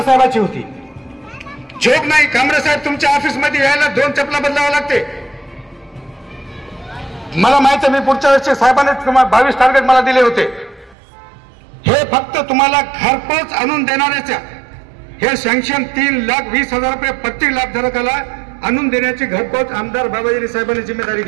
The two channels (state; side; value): drops out; left; at 11.0 s